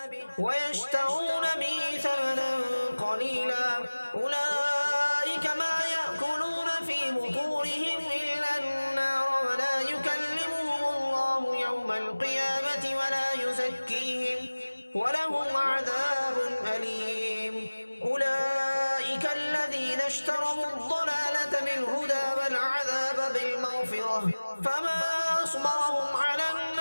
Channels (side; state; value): both; inverted; correlation -1.00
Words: ويشترون به ثمنا قليلا أولئك ما يأكلون في بطونهم إلا النار ولا يكلمهم الله يوم القيامة ولا يزكيهم ولهم عذاب أليم أولئك الذين اشتروا الضلالة بالهدى والعذاب بالمغفرة فما أصبرهم على